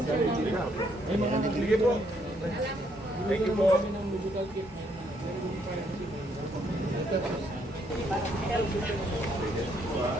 namin. Ay mga... Sige po. Thank you po. ng medical kit.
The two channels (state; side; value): normal; both; correlation 0.71